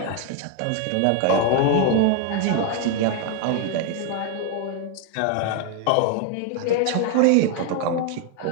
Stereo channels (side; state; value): both; different; correlation 0.01